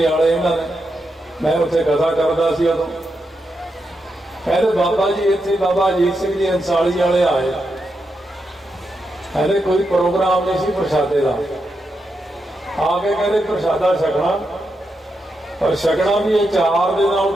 इन्होंने, मैं उत्थे कथा करता सी उदों, कहते बाबा जी इत्थे बाबा अजीत सिंह जी अंसाली वाले आए, कहते कोई प्रोग्राम नहीं सी प्रसादे का, आके कहते प्रसादा छकना, पर छकना भी ये 4 दे नाल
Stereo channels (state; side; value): normal; both; correlation 0.85